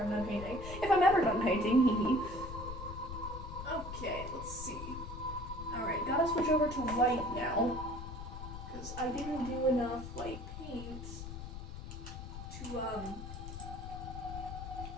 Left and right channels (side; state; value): left; noise; rumble, 9 dB below the sound